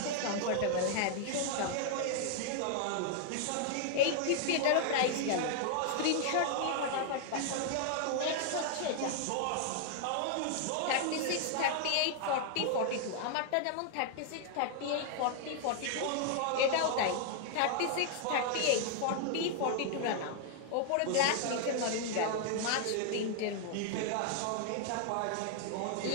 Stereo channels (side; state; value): both; different; correlation 0.00